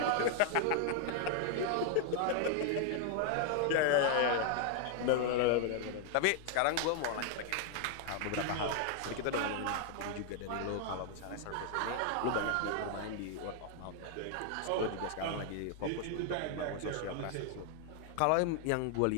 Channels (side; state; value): both; different; correlation 0.00